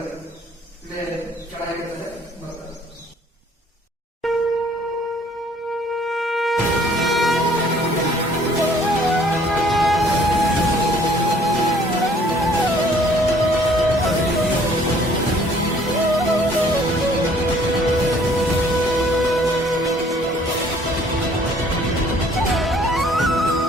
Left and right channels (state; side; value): normal; both; correlation 0.58